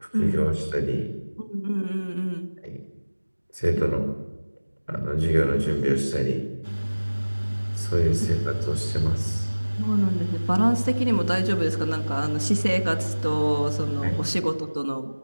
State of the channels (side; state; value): both; inverted; correlation -1.00